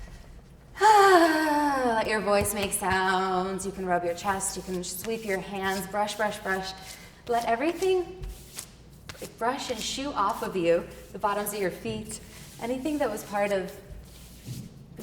Let your voice make sounds. You can rub your chest. You can sweep your hands. Brush, brush, brush. Let everything brush and shoo off of you, the bottoms of your feet, anything that was part of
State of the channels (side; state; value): both; identical; correlation 1.00